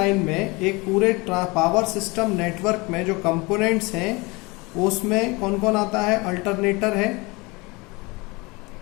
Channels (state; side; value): quieter; right; 25.6 dB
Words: में, एक पूरे power system network में जो components हैं उसमें कौन कौन आता है? अल्टरनेटर है